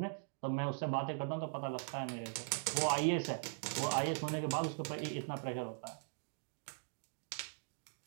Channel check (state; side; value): silent; left; digital silence